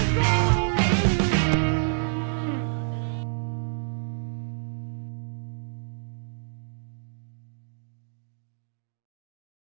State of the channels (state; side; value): silent; left; digital silence